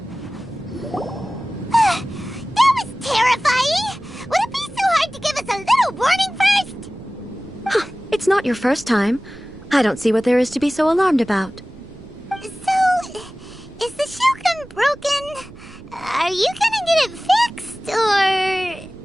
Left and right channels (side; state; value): right; noise; rumble, 21 dB below the sound